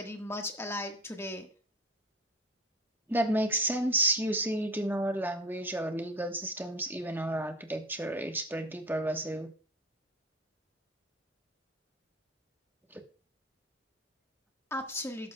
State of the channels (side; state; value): both; normal; correlation 0.33